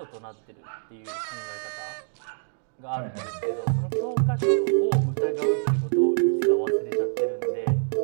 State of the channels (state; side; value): silent; left; digital silence